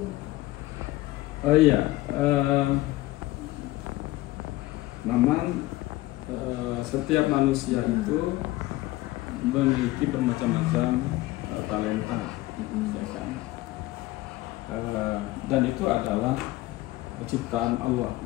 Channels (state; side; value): quieter; right; 18.1 dB